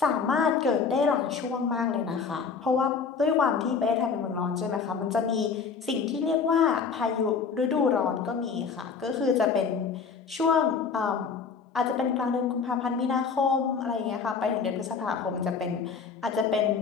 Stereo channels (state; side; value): quieter; right; 5.7 dB